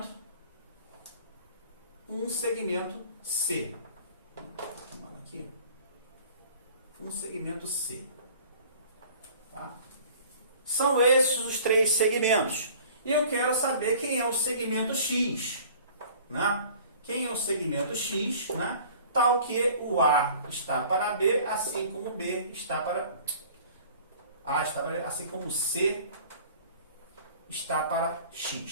um segmento C. Aqui, um segmento C. Tá? São esses os 3 segmentos. E eu quero saber quem é o segmento X, né? Quem é o segmento X, né? Tal que o A está para B, assim como B está para A está para B, assim como C está para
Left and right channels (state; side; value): inverted; both; correlation -0.48